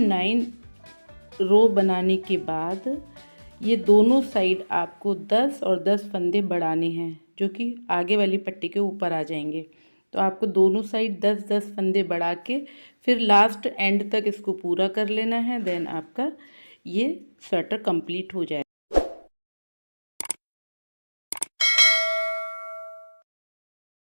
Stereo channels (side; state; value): both; inverted; correlation -1.00